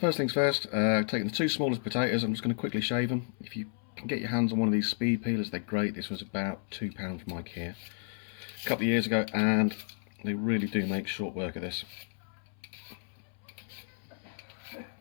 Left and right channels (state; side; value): silent; right; 56 dB below the other